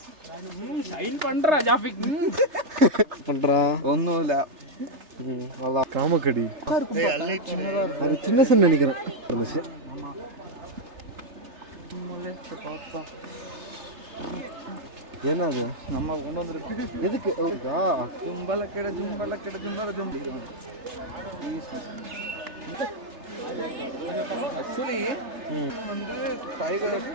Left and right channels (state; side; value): late; left; 3.3 ms